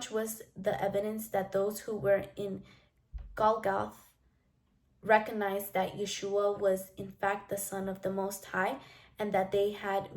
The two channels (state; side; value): identical; both; correlation 1.00